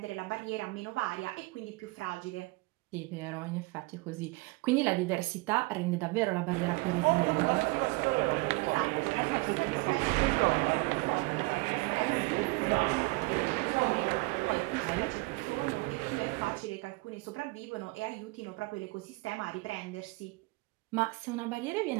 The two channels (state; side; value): quieter; left; 24.6 dB